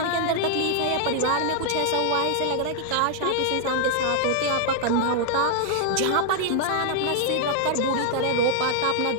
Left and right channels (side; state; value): both; different; correlation -0.01